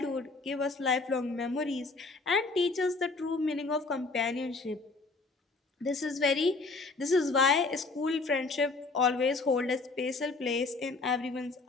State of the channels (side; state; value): right; quieter; 3.7 dB